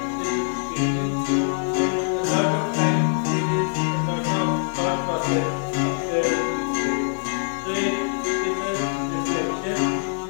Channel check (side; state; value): right; silent; digital silence